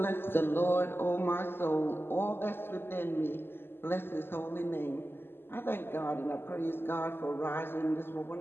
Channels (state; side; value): late; right; 0.11 ms